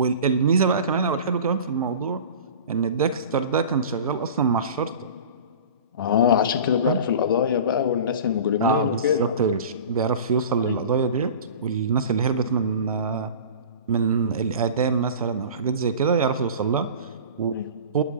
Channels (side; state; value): both; inverted; correlation -0.37